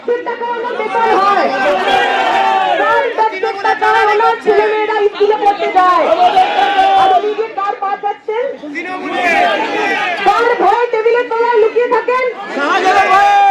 টাকা ওনার বেকার হয়, ওনার ছেলে মেয়েরা স্কুলে পড়তে যায়। আর ওদিকে কার পা যাচ্ছেন, কার ভয়ে টেবিলের তলায় লুকিয়ে থাকেন,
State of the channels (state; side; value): identical; both; correlation 1.00